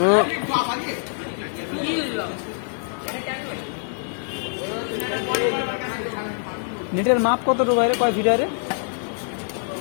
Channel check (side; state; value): right; silent; digital silence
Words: নেটের মাপ কতটুকু রে কয় ফিট রে